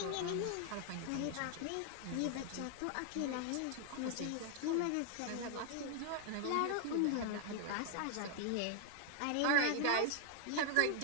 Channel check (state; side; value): different; both; correlation 0.00